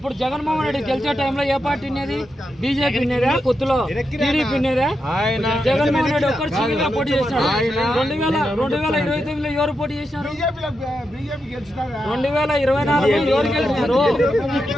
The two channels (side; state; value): both; normal; correlation 0.86